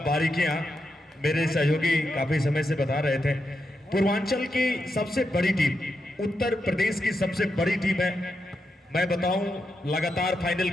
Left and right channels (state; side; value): normal; both; correlation 0.85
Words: बारीकियां, मेरे सहयोगी काफी समय से बता रहे थे। पूर्वांचल की सबसे बड़ी टीम, उत्तर प्रदेश की सबसे बड़ी टीम है। मैं बताऊं लगातार फाइनल